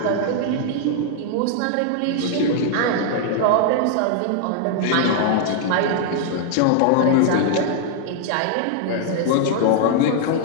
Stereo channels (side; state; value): both; different; correlation -0.01